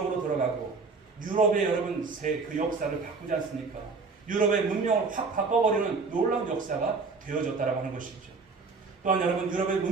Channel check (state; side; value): quieter; left; 4.4 dB